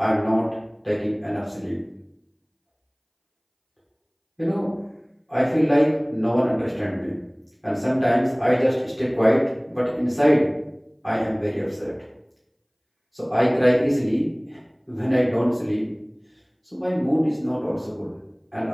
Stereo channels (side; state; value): both; identical; correlation 1.00